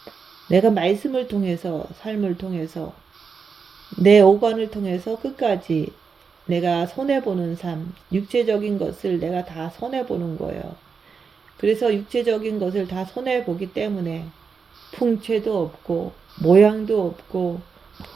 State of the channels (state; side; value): quieter; left; 5.5 dB